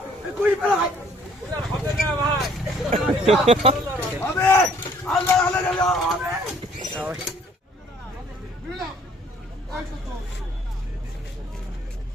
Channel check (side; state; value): both; normal; correlation 0.60